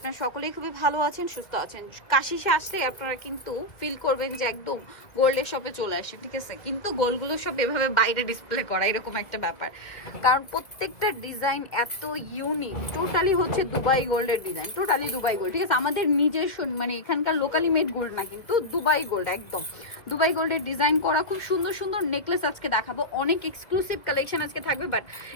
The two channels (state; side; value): late; right; 1.7 ms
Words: সকলেই খুবই ভালো আছেন, সুস্থ আছেন। কাশিসে আসলে আপনারা কিন্তু ফিল করবেন যে একদম গোল্ডের শপে চলে আসি, ঠিক আছে? কিন্তু গোল্ডগুলো সব এভাবে বাইরে ডিসপ্লে করা এরকম একটা ব্যাপার, কারণ প্রত্যেকটা ডিজাইন এত ইউনিক। টোটালি হচ্ছে দুবাই গোল্ডের ডিজাইন, টোটালি দুবাই গোল্ড, ঠিক আছে? আমাদের নিজস্ব মানে এখানকার লোকালি মেড গোল্ড না, কিন্তু দুবাই গোল্ড, একদম দুবাই গোল্ডের ডিজাইন করা খুব সুন্দর সুন্দর নেকলেস আজকে দেখাবো। অনেক এক্সক্লুসিভ কালেকশন আজকে থাকবে, বাট